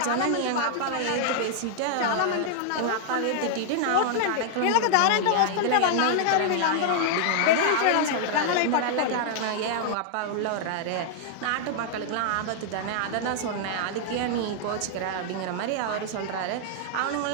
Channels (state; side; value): different; both; correlation -0.01